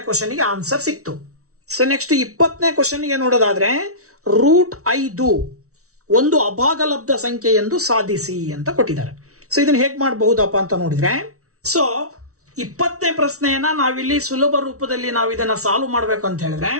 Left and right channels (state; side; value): late; left; 0.64 ms